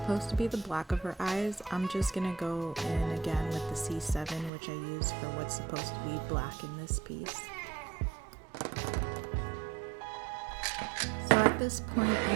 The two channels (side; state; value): left; drops out; at 4.5 s